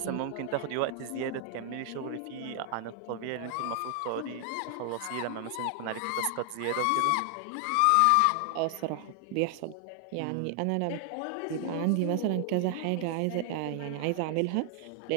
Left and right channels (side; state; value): both; different; correlation 0.00